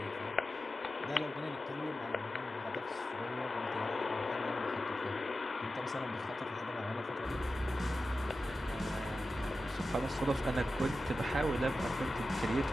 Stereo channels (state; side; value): normal; both; correlation 0.92